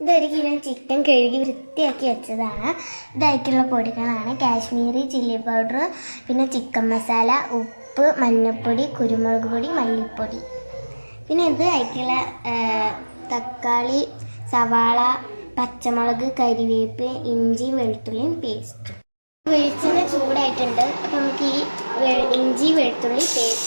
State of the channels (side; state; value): both; inverted; correlation -1.00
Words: ഇതൊരു kilo chicken കഴുകി വൃത്തിയാക്കി വെച്ചതാണ്. ഇതായിട്ടുള്ള പൊടികളാണ് കാശ്മീരി ചില്ലി പൗഡർ, പിന്നെ ചിക്കൻ മസാല, ഉപ്പ്, മഞ്ഞൾപ്പൊടി, കുരുമുളക് പൊടി, മല്ലിപ്പൊടി. പിന്നെ ഇത് ആയിട്ടുള്ള തക്കാളി, സവാള, പച്ചമുളക്, കരിവേപ്പ്, ഇഞ്ചി, വെളുത്തുള്ളിയും പേസ്റ്റ്. വെളിച്ചെണ്ണ ചൂടായിട്ടുണ്ട്. അപ്പം നമുക്ക് ഈ ഇഞ്ചി വെളുത്തുള്ളി